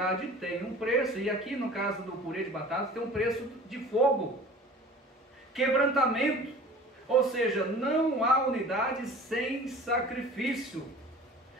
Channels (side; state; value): both; normal; correlation 0.43